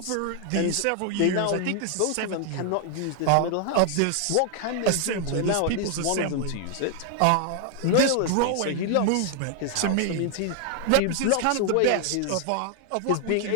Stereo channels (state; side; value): different; both; correlation 0.00